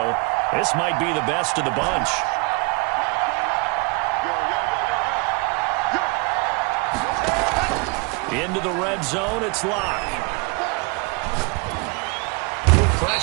This might be the best of the bunch. Into the red zone, it's Locke.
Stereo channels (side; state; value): left; quieter; 28.1 dB